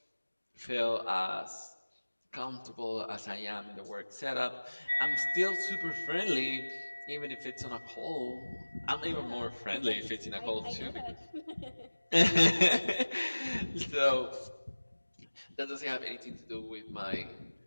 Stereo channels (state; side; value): inverted; both; correlation -1.00